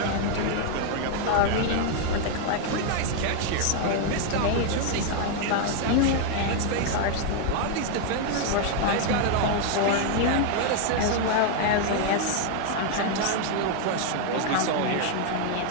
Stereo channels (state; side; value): different; both; correlation 0.00